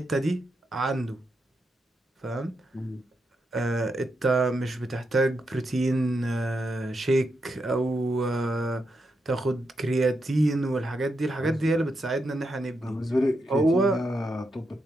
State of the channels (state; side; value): normal; both; correlation 0.84